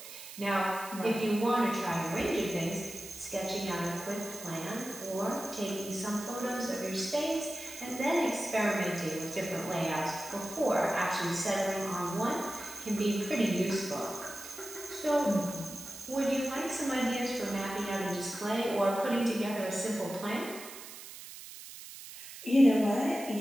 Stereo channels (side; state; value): right; noise; hiss, 13 dB below the sound